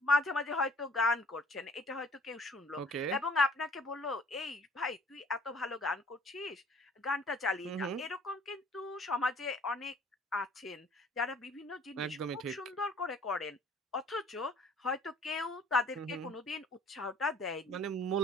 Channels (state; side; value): normal; both; correlation 0.55